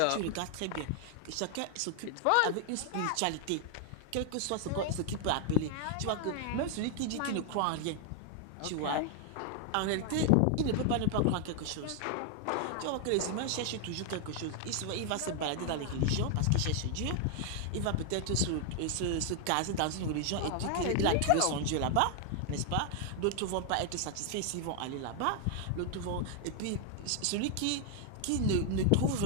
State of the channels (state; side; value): different; both; correlation 0.00